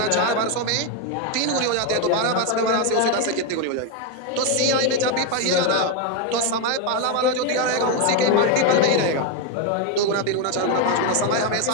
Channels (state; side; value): different; both; correlation 0.02